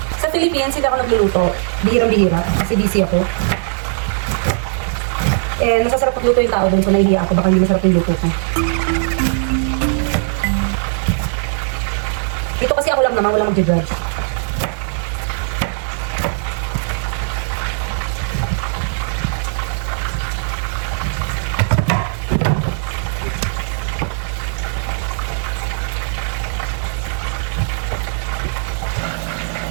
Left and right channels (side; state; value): left; silent; digital silence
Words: Philippines, hindi ako nagluluto. Bihirang-bihira. Kasi busy ako. Eh, masasarap magluto yung tao doon. So, nahihiya ako. Baka hindi masarap yung luto ko. Dito kasi ako lang naman. Walang mag-judge.